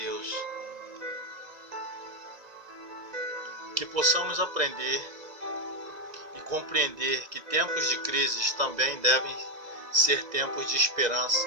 Que possamos aprender e compreender que tempos de crises também devem ser tempos de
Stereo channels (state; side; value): late; left; 2.0 ms